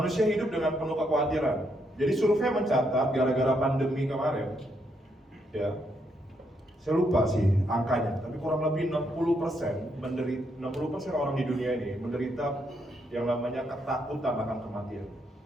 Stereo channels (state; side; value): normal; both; correlation 0.77